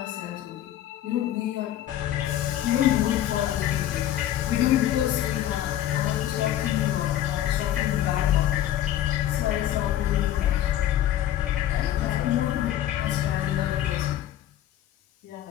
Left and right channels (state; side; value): quieter; right; 12.3 dB